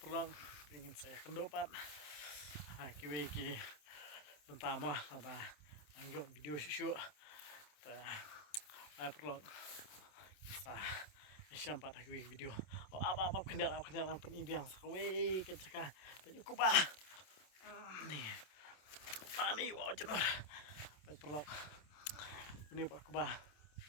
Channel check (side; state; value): right; late; 27 ms